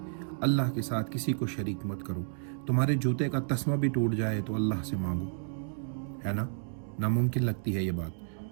اللہ کے ساتھ کسی کو شریک مت کرو، تمہارے جوتے کا تسمہ بھی ٹوٹ جائے تو اللہ سے مانگو، ہے نا؟ ناممکن لگتی ہے یہ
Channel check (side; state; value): left; silent; digital silence